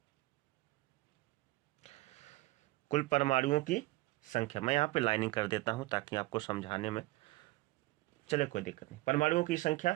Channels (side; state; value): left; quieter; 20.3 dB